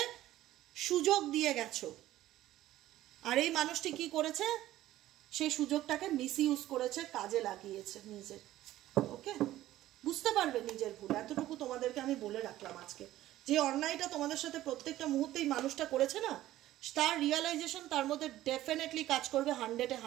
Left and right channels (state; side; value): quieter; left; 14.6 dB